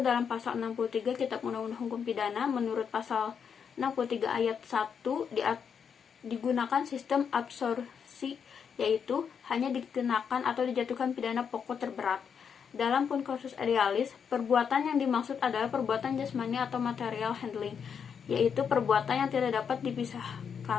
dalam pasal 63 Kitab Undang-Undang Hukum Pidana. Menurut pasal 63 ayat 1 digunakan sistem absorpsi, yaitu hanya dikenakan atau dijatuhkan pidana pokok terberat. Dalam konkursus idealis, perbuatan yang dimaksud adalah perbuatan jasmani atau material handling, yaitu perbuatan yang tidak dapat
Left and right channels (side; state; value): right; quieter; 7.0 dB